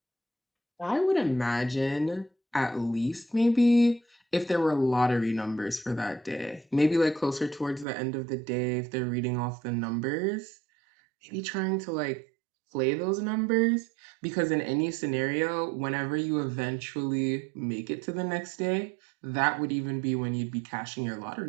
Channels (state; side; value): drops out; left; at 7.9 s